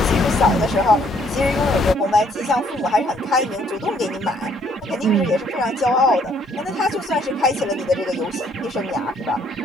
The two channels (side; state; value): both; normal; correlation 0.65